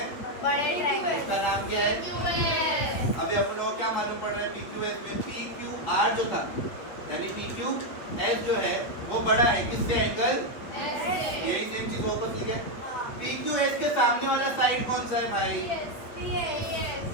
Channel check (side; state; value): right; late; 8.5 ms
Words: बड़े ट्रायंगल। इसका नाम क्या है? अभी अपने को क्या मालूम पड़ रहा है? PQS में PQR जो था, यानी PQS जो है वो बड़ा है किससे? एंगल यही सेम चीज वापस लिखे। PQS के सामने वाला साइड कौन सा है भाई?